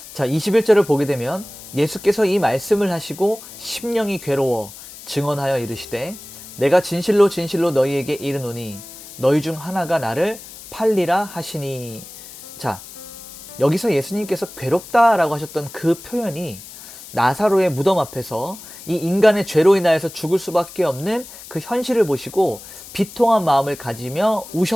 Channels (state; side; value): noise; left; hiss, 16 dB below the sound